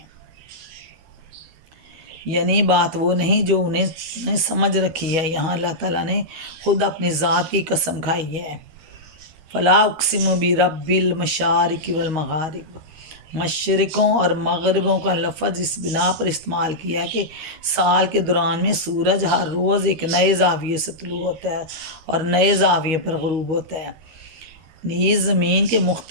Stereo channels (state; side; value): late; left; 13 ms